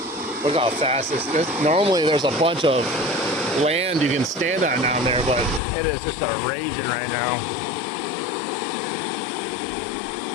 Look how fast this is. Normally there's a bunch of land you can stand on down there, but it is just a raging right now.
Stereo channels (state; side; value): drops out; right; at 5.6 s